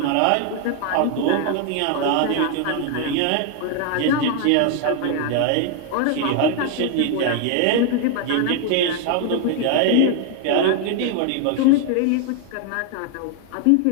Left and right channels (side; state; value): both; different; correlation 0.00